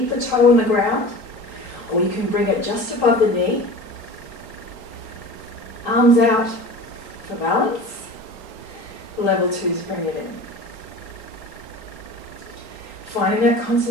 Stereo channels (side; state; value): right; late; 3.9 ms